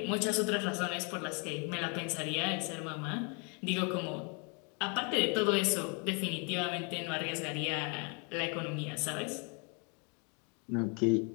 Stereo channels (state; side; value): quieter; right; 35.4 dB